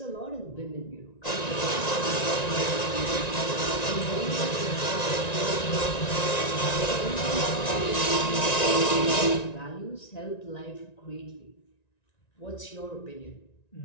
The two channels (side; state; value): right; late; 1.9 ms